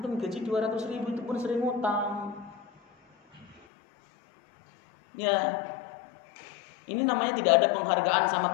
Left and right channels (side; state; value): right; drops out; at 3.6 s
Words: gaji 200.000 itu pun sering utang. Ya, ini namanya tidak ada penghargaan sama